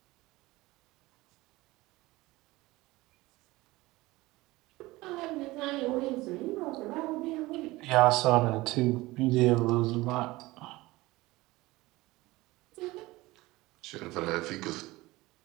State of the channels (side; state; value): left; quieter; 20.0 dB